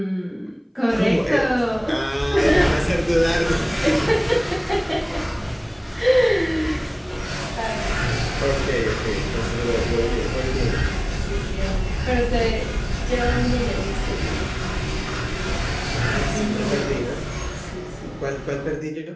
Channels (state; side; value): identical; both; correlation 1.00